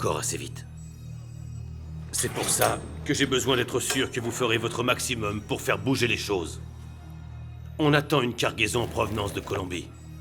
assez vite. C'est pour ça que j'ai besoin d'être sûr que vous ferez votre maximum pour faire bouger les choses. On attend une cargaison en provenance de Colombie.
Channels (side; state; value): both; identical; correlation 1.00